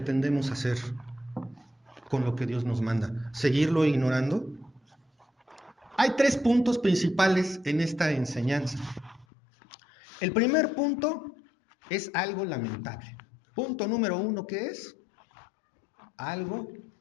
hacer con lo que Dios nos manda? ¿Seguirlo ignorando? Hay 3 puntos principales en esta enseñanza. El primer punto es algo lamentable. Punto número 1, ¿qué es? Algo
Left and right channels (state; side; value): drops out; right; at 9.2 s